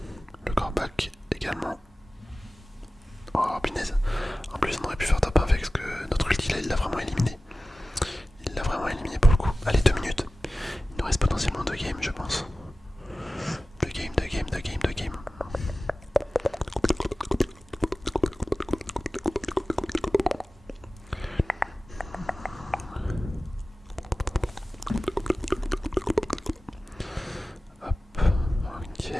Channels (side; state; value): both; normal; correlation 0.96